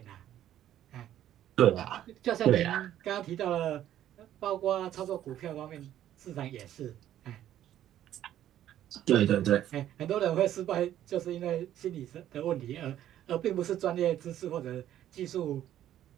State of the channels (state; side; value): quieter; left; 11.9 dB